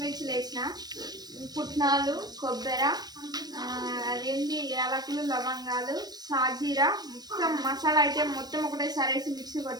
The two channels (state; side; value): late; left; 0.19 ms